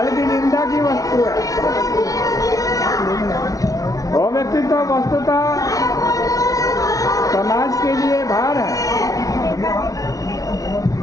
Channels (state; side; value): late; right; 0.17 ms